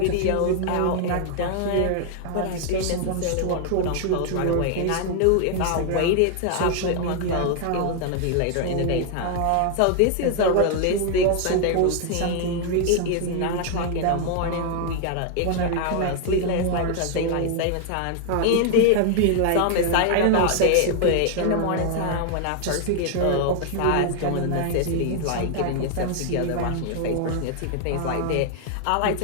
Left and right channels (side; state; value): both; different; correlation 0.00